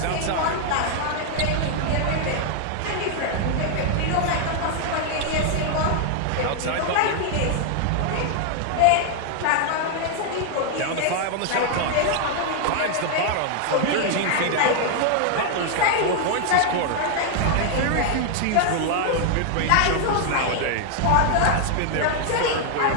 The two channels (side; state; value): both; different; correlation 0.00